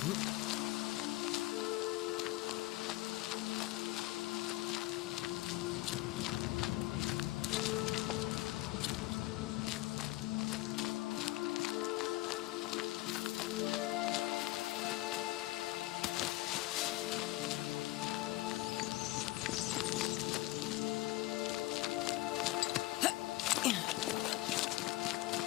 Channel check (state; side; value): quieter; right; 18.8 dB